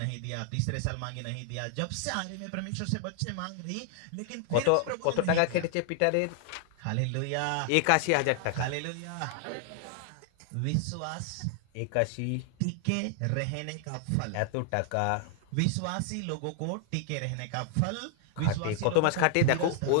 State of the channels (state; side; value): different; both; correlation 0.00